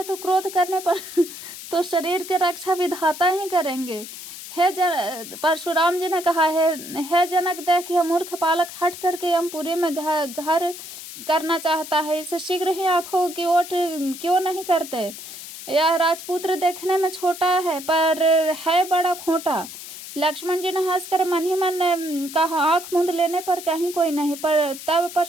तो क्रोध करने पर तो शरीर की रक्षा विधाता ही करेंगे। परशुराम जी ने कहा है, हे जनक, देख यह मूर्ख बालक हट करके यमपुरी में घर करना चाहता है, इसे शीघ्र ही आंखों की ओट क्यों नहीं करते। यह राजपुत्र देखने में छोटा है पर है बड़ा खोटा। लक्ष्मण जी ने हंसकर मन ही मन कहा, आंख मूंद लेने पर कहीं कोई नहीं। पर तब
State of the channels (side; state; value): left; noise; hiss, 12 dB below the sound